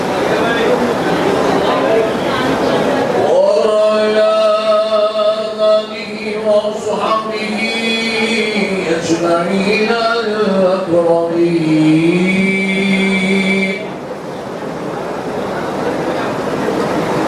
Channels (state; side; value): identical; both; correlation 1.00